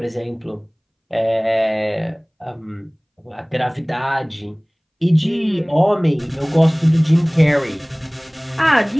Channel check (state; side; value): identical; both; correlation 1.00